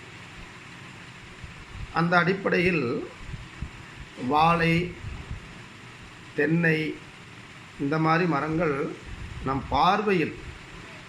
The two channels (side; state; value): both; identical; correlation 1.00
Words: அந்த அடிப்படையில் வாழை, தென்னை இந்த மாதிரி மரங்கள் நம் பார்வையில்,